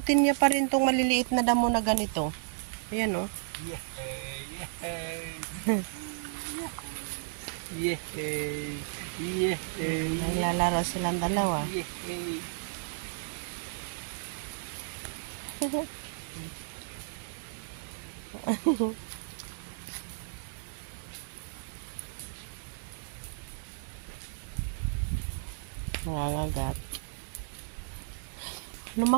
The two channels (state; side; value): silent; left; 56 dB below the other